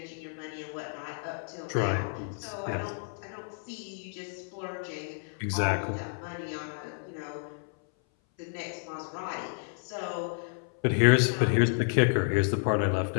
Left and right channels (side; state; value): right; silent; 57 dB below the other